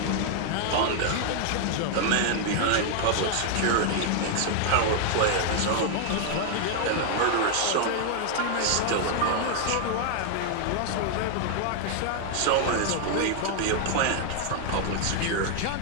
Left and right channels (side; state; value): both; different; correlation 0.00